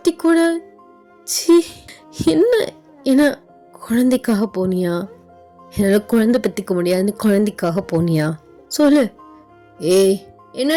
கூட என்ன குழந்தைக்காக போனியா? என்னால் குழந்தை பற்றிக்க முடியாதுன்னு குழந்தைக்காக போனியா? சொல்லு. ஏய்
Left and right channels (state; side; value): identical; both; correlation 1.00